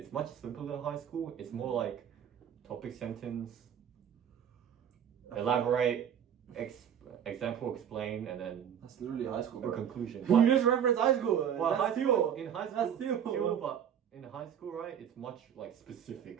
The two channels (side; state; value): left; quieter; 8.9 dB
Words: much simpler than high school. It's more like topic sentence, elaborate, example, explain, and then That's literally high school, a bro. conclusion. You just reference high school. Well, That's high school, still. in high school, That's still. but in high school, right, it's much like